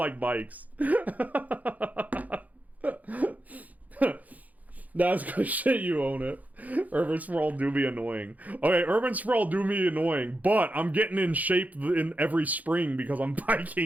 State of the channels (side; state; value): left; late; 0.078 ms